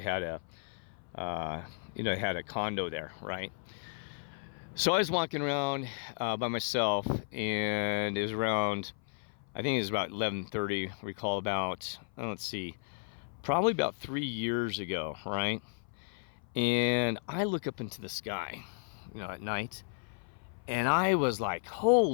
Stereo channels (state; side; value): silent; right; 55 dB below the other